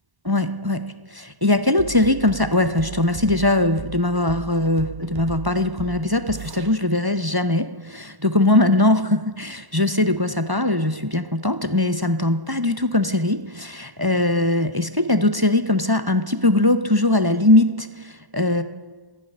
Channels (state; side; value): late; left; 1.1 ms